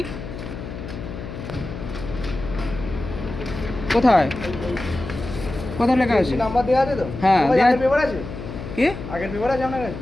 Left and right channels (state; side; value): noise; left; hum, 9 dB below the sound